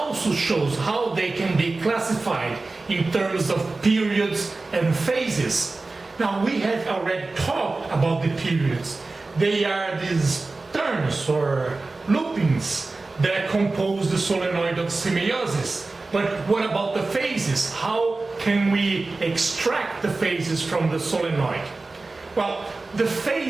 shows how they can be classified in terms of periods and phases. Now we have already talked about the periods. They are these turns or loopings that compose the solenoid of Semeiosis. But what about the phases? How can we extract the phases from the solenoid? Well, the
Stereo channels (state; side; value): quieter; left; 3.5 dB